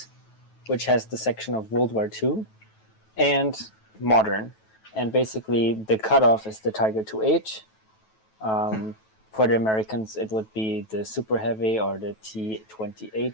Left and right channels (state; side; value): late; right; 9.2 ms